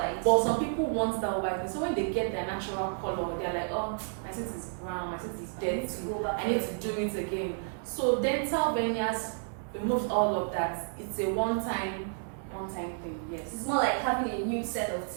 But some people want that white. So when they get their natural color, they're like, oh, my teeth is brown, my teeth is dirty, I need to do it again. So dental veneers removes all of that. It's a one-time thing, yes. It's more like having a new set of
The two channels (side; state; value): left; silent; 57 dB below the other